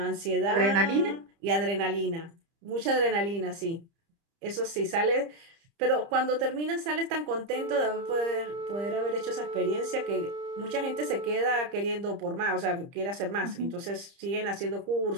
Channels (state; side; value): late; left; 30 ms